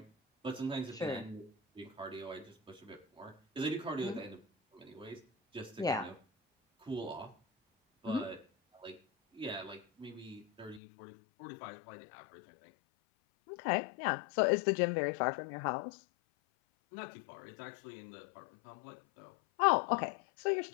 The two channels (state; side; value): drops out; right; at 10.8 s